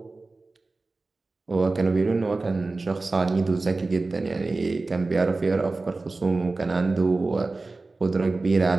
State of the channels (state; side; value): quieter; left; 3.5 dB